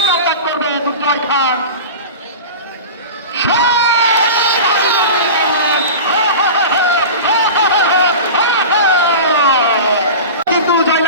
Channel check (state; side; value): inverted; both; correlation -0.31